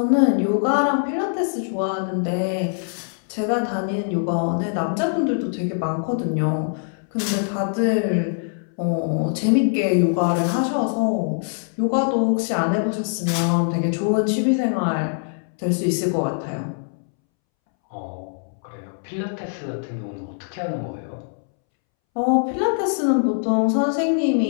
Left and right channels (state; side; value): silent; right; 64 dB below the other